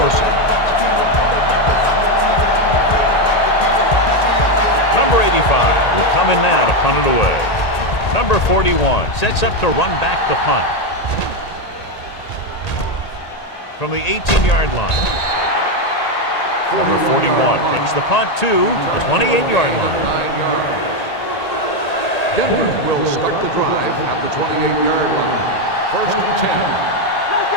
it. Number 85 will come in now to punt it away. Number 41 sets up to run back the punt. From the 18-yard line. Number 41 takes the punt to the 28-yard line. Denver will start the drive at the 28-yard line. First and 10. Let's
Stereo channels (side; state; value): right; late; 1.8 ms